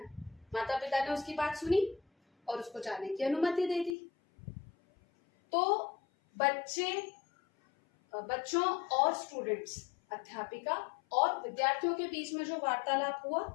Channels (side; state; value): right; drops out; at 4.0 s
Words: माता पिता ने उसकी बात सुनी और उसको जाने की अनुमति दे दी। तो बच्चों और स्टूडेंट्स, अध्यापिका और विद्यार्थियों के बीच में जो वार्तालाप हुआ